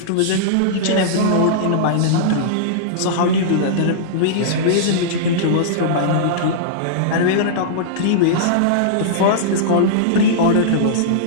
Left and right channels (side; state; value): both; different; correlation -0.03